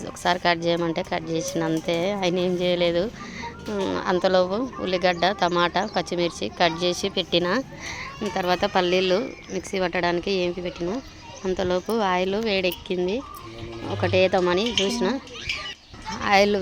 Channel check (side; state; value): both; identical; correlation 1.00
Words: ఒకసారి కట్ చేయమంటే కట్ చేసిన, అంతే. ఆయన ఏం చేయలేదు. అంతలోపు ఉల్లిగడ్డ, టమాటా, పచ్చిమిర్చి కట్ చేసి పెట్టిన. తర్వాత పల్లీలు మిక్సీ పట్టడానికి ఏంపి పెట్టిన. అంతలోపు ఆయిల్ వేడెక్కింది. ఒకటే తమని చూసిన, ఆయిల్